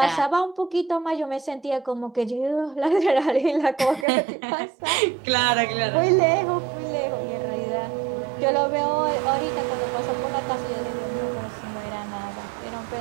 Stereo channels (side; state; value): left; drops out; at 4.0 s